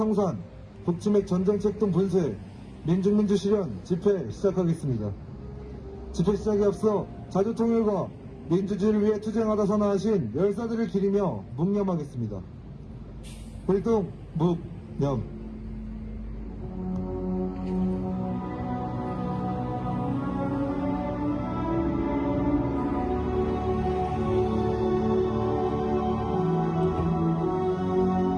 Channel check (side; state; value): both; identical; correlation 1.00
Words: 북치맥 전쟁책 등 분쇄 민중민주 실현 집회 시작하겠습니다. 집회 시작에 앞서 자주통일과 민주주의를 위해 투쟁하다 선언하신 열사들을 기리며 묵념하겠습니다. 불동 묵념.